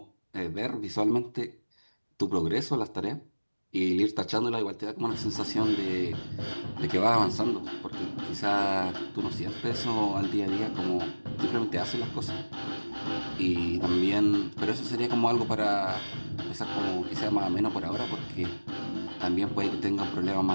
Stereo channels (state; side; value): inverted; both; correlation -1.00